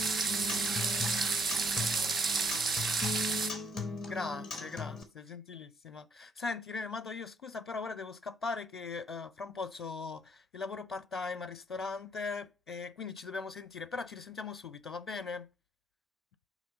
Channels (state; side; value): normal; both; correlation 0.66